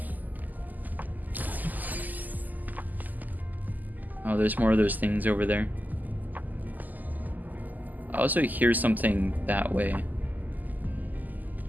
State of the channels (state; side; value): late; left; 0.083 ms